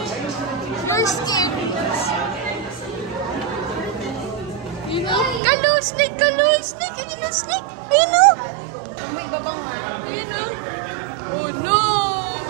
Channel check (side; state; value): left; drops out; at 5.4 s